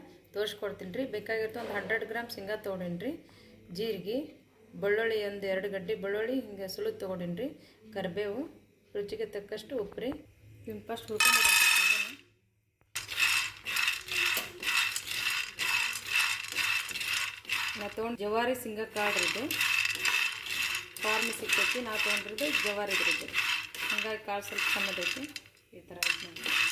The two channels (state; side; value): identical; both; correlation 1.00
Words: ತೋರಿಸ್ಕೊಡ್ತೀನಿ ರೀ. ಬೇಕಾಗಿತ್ತು ಒಂದು 100 ಗ್ರಾಮ್ ಶೇಂಗಾ ತೊಗೊಂಡಿನಿ ರೀ. ಜೀರಿಗೆ, ಬೆಳ್ಳುಳ್ಳಿ ಒಂದು 2 ಗಡ್ಡೆ ಬೆಳ್ಳುಳ್ಳಿ ಹಿಂಗೆ ಸುಲಿದು ತೊಗೊಂಡಿನಿ ರೀ. ಕರಿಬೇವು, ರುಚಿಗೆ ತಕ್ಕಷ್ಟು ಉಪ್ಪು ರೀ. ಇನ್ನು ಫಸ್ಟ್ ಹುರ್ಕೊಂಡು ನಾ ತೊಗೊಂಡು ಜವಾರಿ ಶೇಂಗಾ ಕಾಳು ಇದು ಫಾರ್ಮ್ ಸಿಗ್ತೈತಿ. ನಾ ತೊಗೊಂಡಿರೋದು ಜವಾರಿ ಇದ್ರದ್ದು, ಹಂಗಾಗಿ ಕಾಳು ಸ್ವಲ್ಪ ಸಣ್ಣದೈತಿ. ಈ ಥರ ಆಯ್ತು ನೋಡಿ.